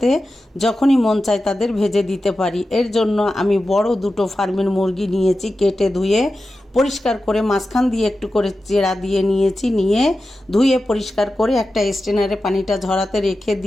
যখনই মন চায় তাদের ভেজে দিতে পারি। এর জন্য আমি বড় দুটো ফার্মের মুরগি নিয়েছি, কেটে ধুয়ে পরিষ্কার করে মাঝখান দিয়ে একটু করে চেরা দিয়ে নিয়েছি, নিয়ে ধুয়ে পরিষ্কার করে একটা স্ট্রেনারে পানিটা ঝরাতে রেখে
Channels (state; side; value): normal; both; correlation 0.93